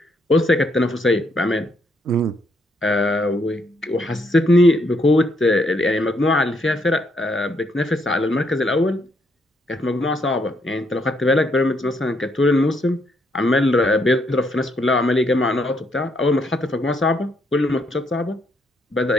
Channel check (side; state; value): both; normal; correlation 0.74